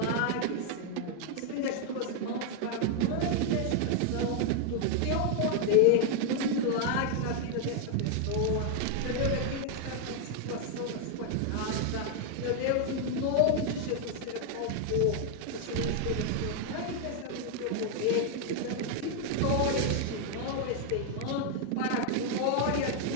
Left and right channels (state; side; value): different; both; correlation 0.00